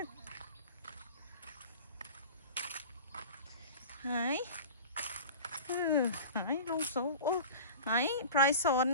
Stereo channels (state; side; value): inverted; both; correlation -0.37